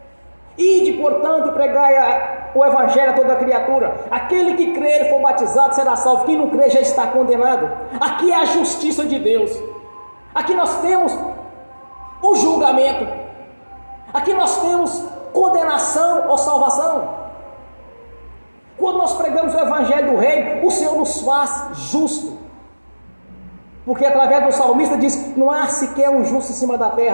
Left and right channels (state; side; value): inverted; both; correlation -1.00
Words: ide, portanto, e pregai o evangelho a toda criatura. Aquele que crer e for batizado será salvo. Quem não crer já está condenado. Aqui é a justiça de Deus. Aqui nós temos o julgamento. Aqui nós temos condenação ou salvação. Quando nós pregamos o evangelho do reino, o Senhor nos faz justo. Porque através do salmista diz que não há sequer um justo em cima da